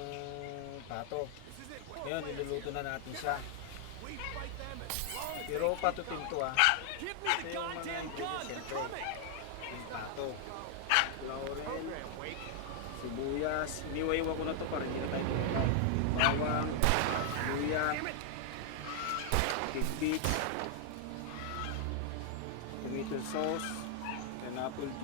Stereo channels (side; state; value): both; different; correlation 0.00